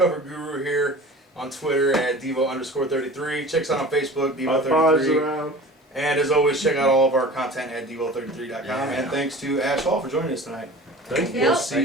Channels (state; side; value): normal; both; correlation 0.39